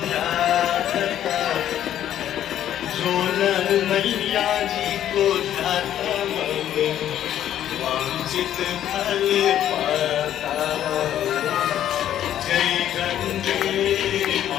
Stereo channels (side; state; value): right; quieter; 11.2 dB